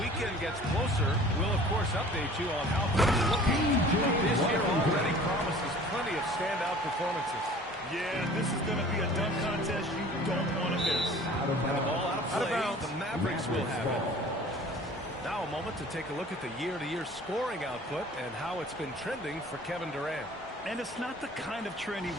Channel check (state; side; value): normal; both; correlation 0.47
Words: gets closer, we'll, of course, update you on how things are looking. But this year already promises plenty of standout performances. Yeah, this is going to be a dunk contest you don't want to miss. And the ball out of play, the Mavericks will have it. Now a moment to take a look at the year-to-year scoring output and how it's been trending for Kevin Durant. And it's not the kind of trend he